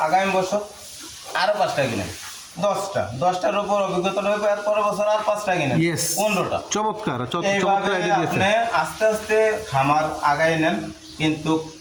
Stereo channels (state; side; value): identical; both; correlation 1.00